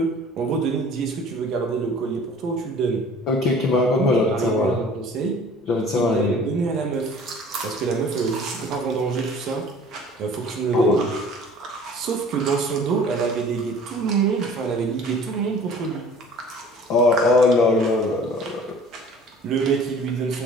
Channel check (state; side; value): normal; both; correlation 0.48